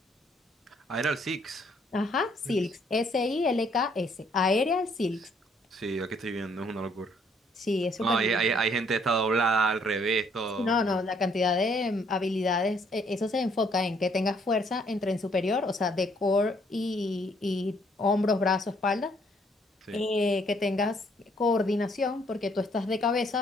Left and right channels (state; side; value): normal; both; correlation 0.66